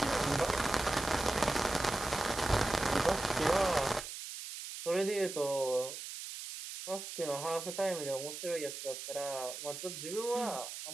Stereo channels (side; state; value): right; noise; hiss, 8 dB below the sound